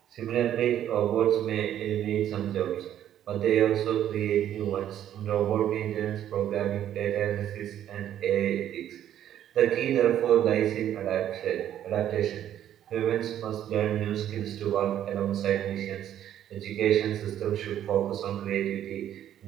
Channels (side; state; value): left; quieter; 11.0 dB